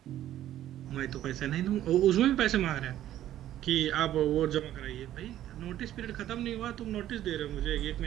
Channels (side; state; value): left; quieter; 12.5 dB